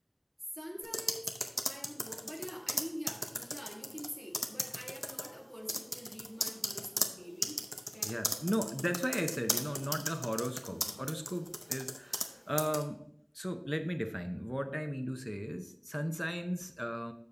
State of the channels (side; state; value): both; identical; correlation 1.00